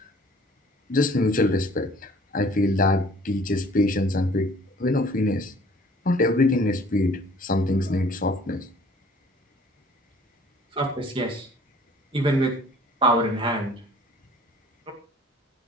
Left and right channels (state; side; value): normal; both; correlation 0.53